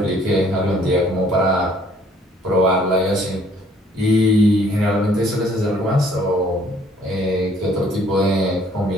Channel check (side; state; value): both; normal; correlation 0.61